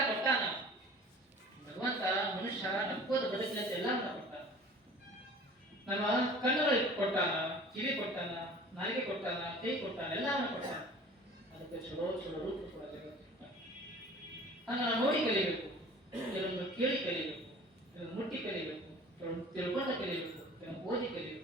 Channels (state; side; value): normal; both; correlation 0.46